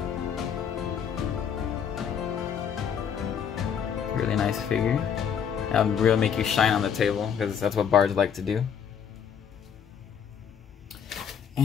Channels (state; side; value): quieter; right; 7.8 dB